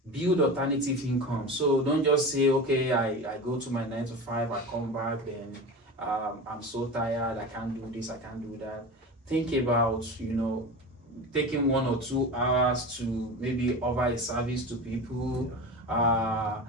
So don't just say, okay, I go to my 9 to 5, I come back, then I'm so tired, I can't do this, I can't do that. Think about taking 1 or 2 hours to maybe offer a service to people.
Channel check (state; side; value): normal; both; correlation 0.28